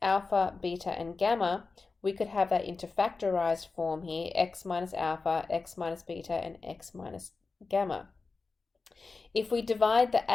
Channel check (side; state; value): right; quieter; 4.1 dB